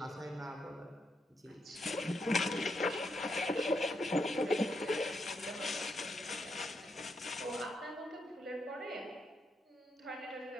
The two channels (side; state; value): both; normal; correlation 0.80